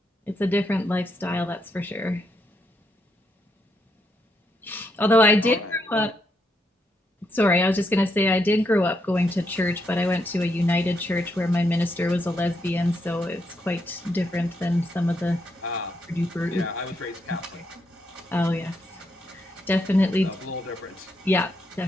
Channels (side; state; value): both; normal; correlation 0.78